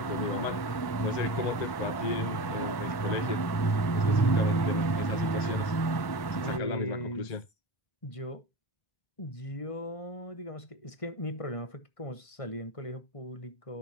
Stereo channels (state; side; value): late; right; 1.1 ms